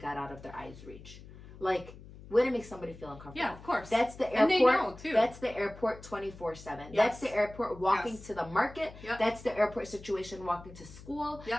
out of their eyes' reach. Like, way to make somebody feel uncomfortable. Yeah, of course. That's the airport. And they know, too. That's the airport 24/7. Yes. That's the airport walking to the market. Yep. That's the airport situation walking to school.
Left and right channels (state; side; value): noise; left; hum, 17 dB below the sound